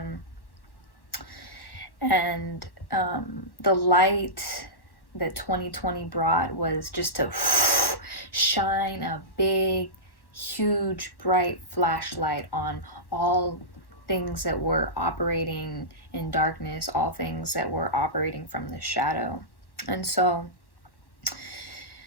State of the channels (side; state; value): right; late; 1.1 ms